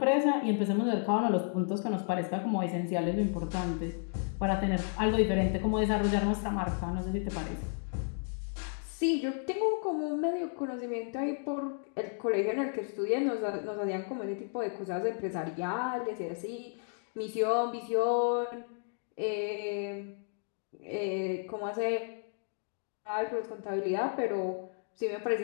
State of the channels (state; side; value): silent; right; 56 dB below the other